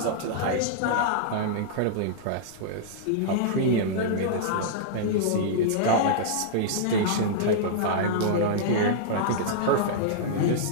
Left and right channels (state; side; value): different; both; correlation -0.02